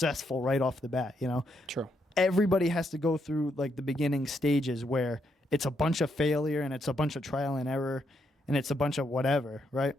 right off the bat. True. Everybody has to go through like the beginning stages where it's a bunch of failure and it's a bunch of trial and error. And it's a bunch of whatever, right?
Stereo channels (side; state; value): both; normal; correlation 0.78